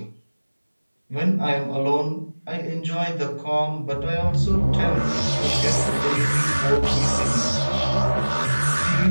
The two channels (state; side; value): inverted; both; correlation -1.00